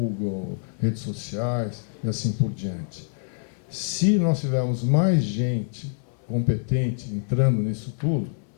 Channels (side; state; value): right; silent; 61 dB below the other